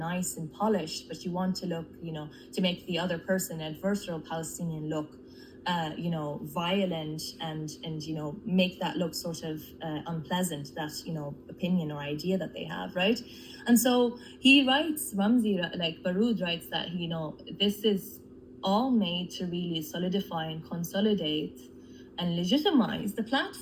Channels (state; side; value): identical; both; correlation 1.00